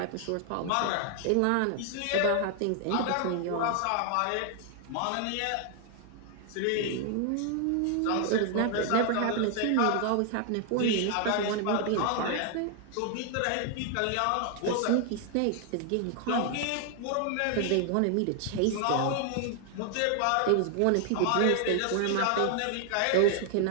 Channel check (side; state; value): both; different; correlation 0.00